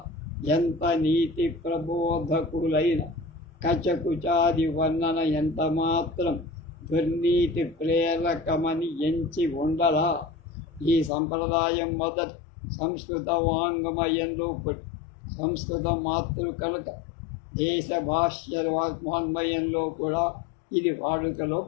ఎంత నీతి ప్రబోధకులైన కచకుచాది వర్ణన ఎంత మాత్రం దుర్నీతి ప్రేరకమని ఎంచి ఉండలా. ఈ సంప్రదాయం మొదట సంస్కృత వాంగ్మయంలో పుట్టి సంస్కృత మాతృ కనుక దేశ భాష్య వాంగ్మయంలో కూడా ఇది వాడుకలో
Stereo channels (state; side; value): drops out; right; at 11.1 s